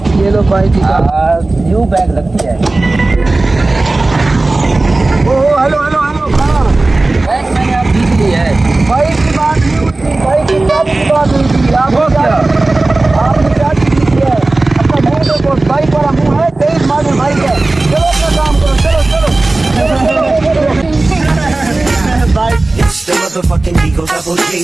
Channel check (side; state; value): left; quieter; 3.1 dB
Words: ये लो बाइक की चाबी। न्यू बैग लगती है। ओह हेलो हेलो हेलो, कहाँ? बैग मैंने आप जीत ली है। बाइक की बात नहीं हुई थी, बाइक की चाबी की बात हुई थी। वो क्या? आपने चाबी दी है। अपना मुँह देखो, बाइक वाला मुँह है, 23 मॉडल बाइक है। चलो अपना काम करो, चलो चलो। Bike It's the motherfucking Eagle Double G.